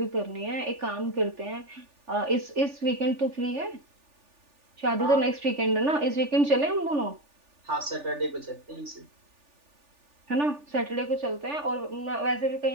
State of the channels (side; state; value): left; late; 3.4 ms